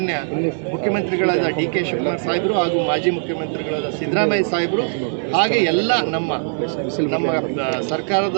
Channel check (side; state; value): left; silent; digital silence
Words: ಮುಖ್ಯಮಂತ್ರಿಗಳಾದ ಡಿ.ಕೆ. ಶಿವಕುಮಾರ್ ಸಾಹೇಬರು ಹಾಗೂ ಮಾಜಿ ಮುಖ್ಯಮಂತ್ರಿಗಳಾದ ಸಿದ್ದರಾಮಯ್ಯ ಸಾಹೇಬರು ಹಾಗೆ ಎಲ್ಲ ನಮ್ಮ